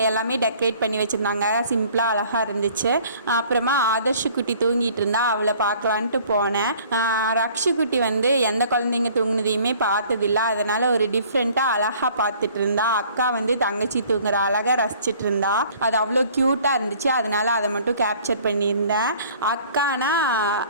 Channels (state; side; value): inverted; both; correlation -0.54